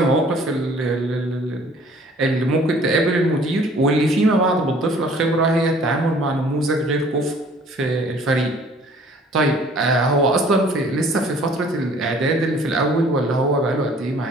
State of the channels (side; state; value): both; normal; correlation 0.54